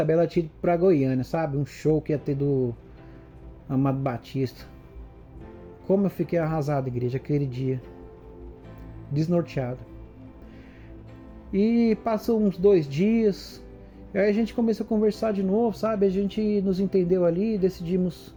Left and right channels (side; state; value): both; identical; correlation 1.00